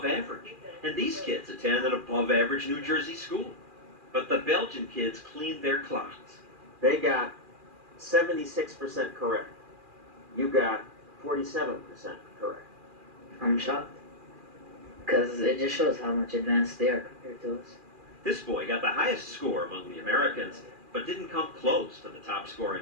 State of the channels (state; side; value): late; left; 2.4 ms